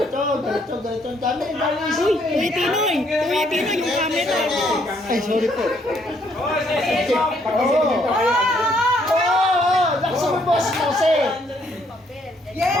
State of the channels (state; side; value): normal; both; correlation 0.69